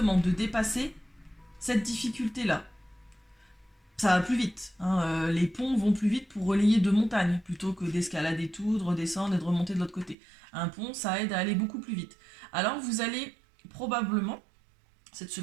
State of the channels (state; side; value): drops out; left; at 10.2 s